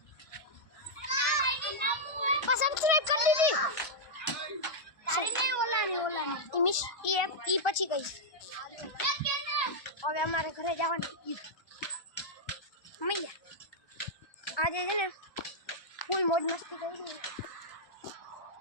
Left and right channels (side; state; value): right; late; 1.2 ms